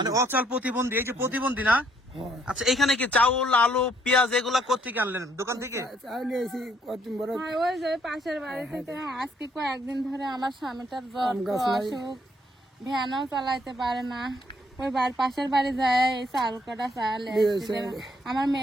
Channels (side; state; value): both; normal; correlation 0.68